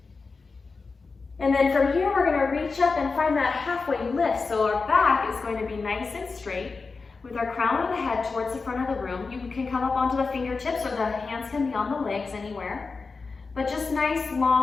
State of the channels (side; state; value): right; quieter; 4.3 dB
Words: And then from here, we're going to reach up and find that halfway lift. So our back is going to be nice and straight with our crown of the head towards the front of the room. You can come up onto the fingertips or the hands can be on the legs anywhere. But just nice,